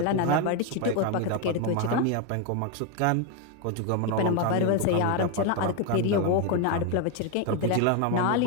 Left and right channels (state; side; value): different; both; correlation 0.01